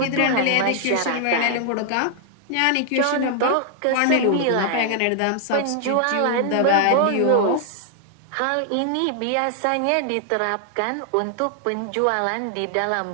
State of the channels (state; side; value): different; both; correlation 0.00